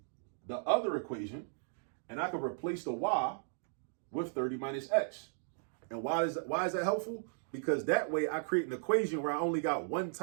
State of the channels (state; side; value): silent; left; digital silence